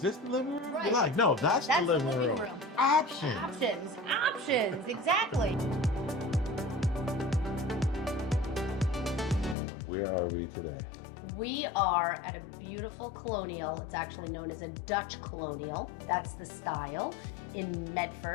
this the living room? You're Right. like, no, that's the That's the living living room. room. Options. Options, exactly. Where are we today? We are at a beautiful colonial. It's actually known as a Dutch Colonial. That's the style in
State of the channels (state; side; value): drops out; right; at 9.6 s